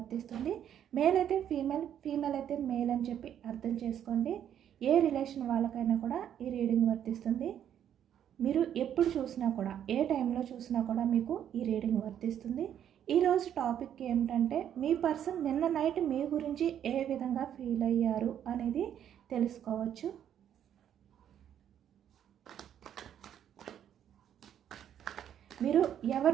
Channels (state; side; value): quieter; left; 9.8 dB